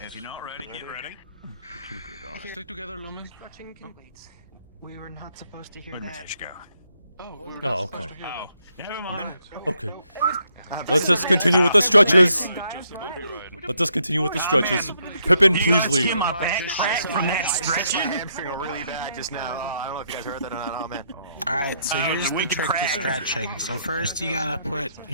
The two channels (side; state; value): both; inverted; correlation -0.74